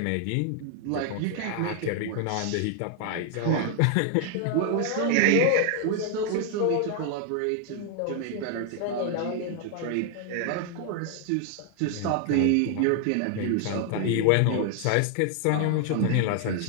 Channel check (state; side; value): different; both; correlation 0.00